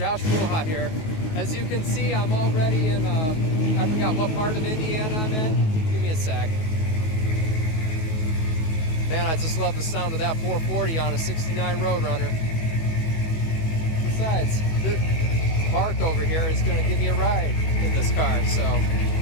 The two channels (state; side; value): late; right; 18 ms